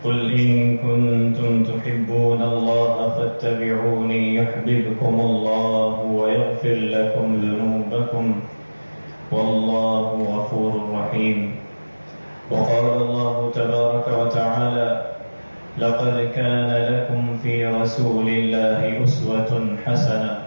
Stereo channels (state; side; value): inverted; both; correlation -1.00